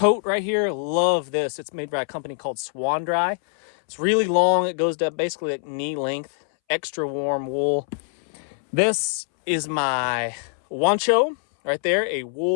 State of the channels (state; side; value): silent; right; 63 dB below the other